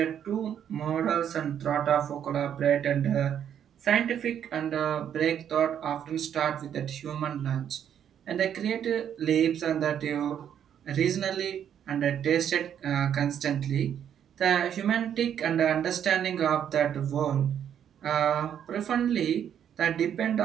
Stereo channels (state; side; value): quieter; left; 9.2 dB